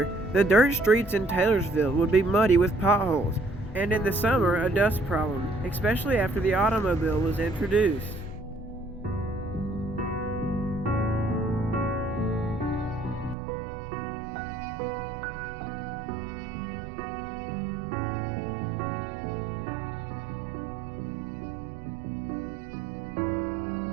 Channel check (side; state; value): left; drops out; at 13.4 s